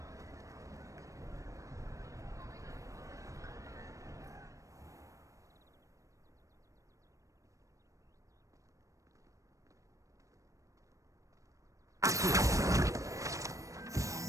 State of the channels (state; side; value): late; left; 0.16 ms